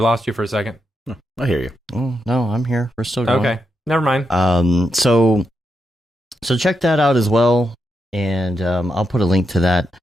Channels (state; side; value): normal; both; correlation 0.84